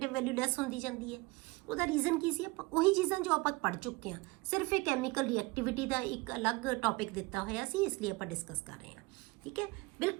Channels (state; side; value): quieter; left; 24.1 dB